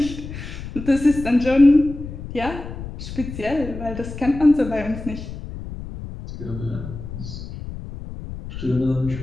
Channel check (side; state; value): left; noise; rumble, 10 dB below the sound